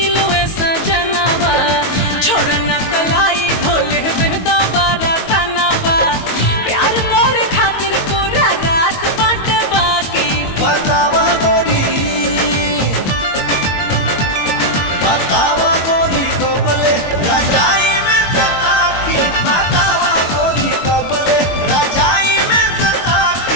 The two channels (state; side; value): late; right; 22 ms